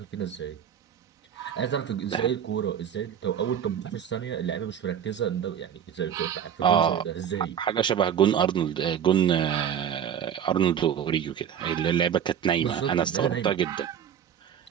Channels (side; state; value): left; quieter; 8.9 dB